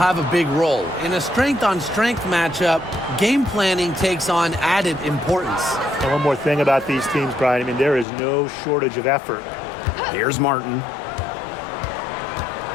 a big role. In a strength-on-strength matchup, game planning takes on added importance. And one more thing about these teams, Brian. I mean, there is no shortage of effort. Here's Martin.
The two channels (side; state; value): right; drops out; at 8.1 s